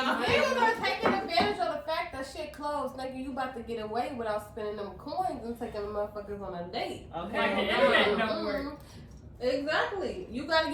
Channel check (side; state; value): both; identical; correlation 1.00